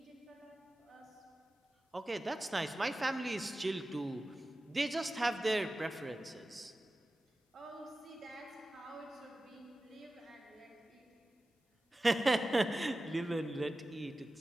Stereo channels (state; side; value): normal; both; correlation 0.95